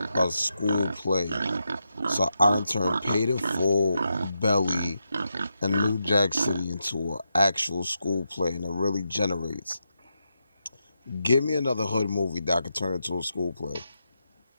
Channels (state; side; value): inverted; both; correlation -0.86